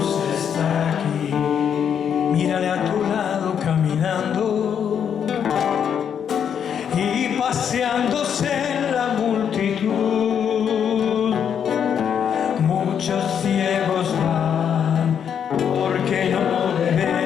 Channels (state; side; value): quieter; right; 8.1 dB